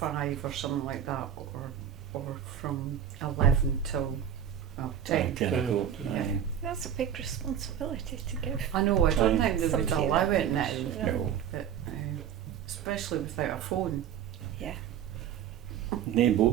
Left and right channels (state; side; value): quieter; left; 9.3 dB